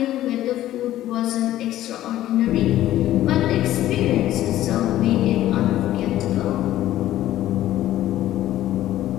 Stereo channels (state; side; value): quieter; right; 13.7 dB